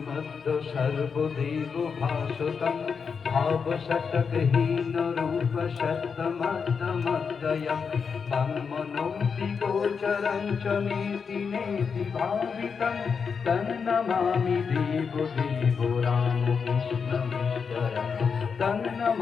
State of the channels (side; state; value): right; quieter; 5.9 dB